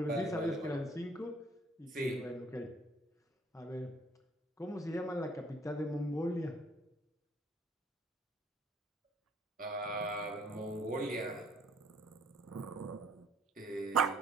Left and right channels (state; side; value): normal; both; correlation 0.61